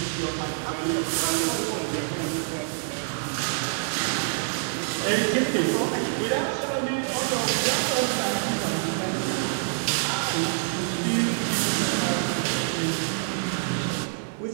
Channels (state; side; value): silent; left; digital silence